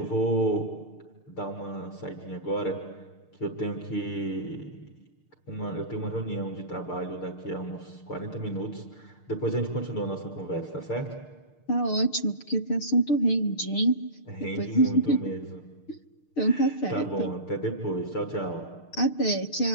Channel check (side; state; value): right; late; 6.6 ms